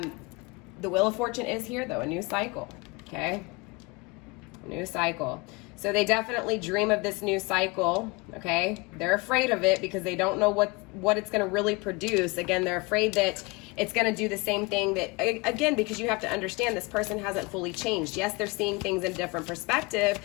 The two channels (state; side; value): quieter; right; 26.5 dB